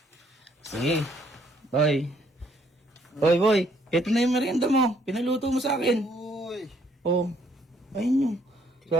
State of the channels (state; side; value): normal; both; correlation 0.67